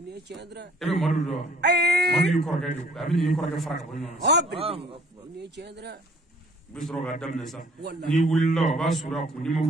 e bɛ Madu dɔn Madu y'i kɔrɔkɛ de a bɛ n'i kɔrɔkɛ fara ka bɔ ɲɔgɔn na u bɛ sɔrɔ k'a daminɛ sa n'i wulila o b'a suru a kun n'i ma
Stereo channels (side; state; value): both; normal; correlation 0.56